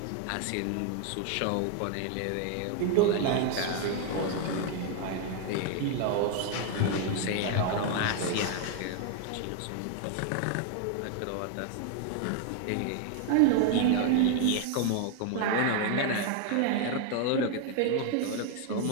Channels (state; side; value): different; both; correlation 0.00